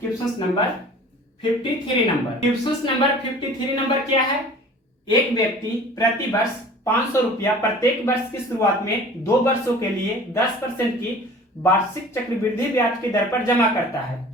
number 53 number. Question number 53 number क्या है? एक व्यक्ति प्रति वर्ष 500 रुपया प्रत्येक वर्ष की शुरुआत में 2 वर्षों के लिए 10% की वार्षिक चक्रवृद्धि ब्याज की दर पर जमा करता है,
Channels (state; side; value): normal; both; correlation 0.45